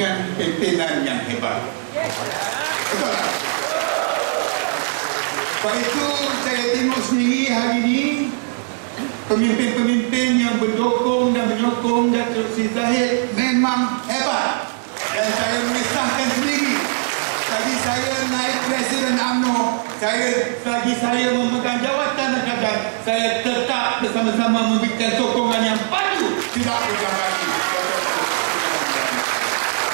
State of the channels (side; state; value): left; silent; digital silence